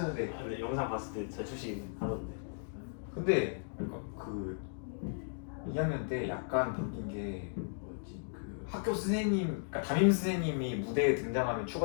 근데 영상 봤을 때 잘 추시긴 하던데. 근데 그 2학년 때 약간 바뀐 게 뭐였지? 그 학교 선생님, 그러니까 담임 선생님이 무대에 등장하면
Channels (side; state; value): right; silent; digital silence